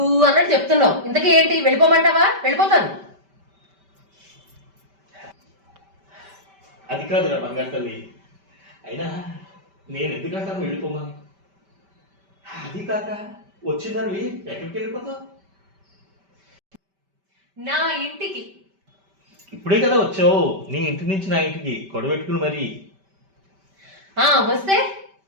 అన్నట్టు చెప్తున్నావు. ఇంతకీ ఏంటి, వెళ్ళిపోమంటావా? వెళ్ళిపోతాను. అది కాదురా బంగారు తల్లి, అయినా నేను ఎందుకంటాను వెళ్ళిపోమని? అది కాక వచ్చిందని ఎక్కడికి వెళ్ళిపోతావు? నా ఇంటికి. ఇప్పుడే కదా వచ్చావు నీ ఇంటి నుంచి నా ఇంటికి గొడవ పెట్టుకుని మరి. వస్తే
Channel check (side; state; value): left; late; 5.1 ms